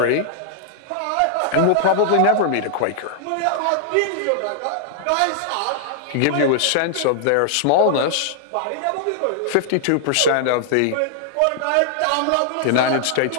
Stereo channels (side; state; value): both; different; correlation -0.01